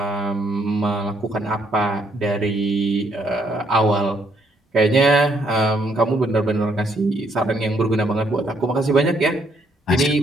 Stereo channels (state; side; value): normal; both; correlation 0.71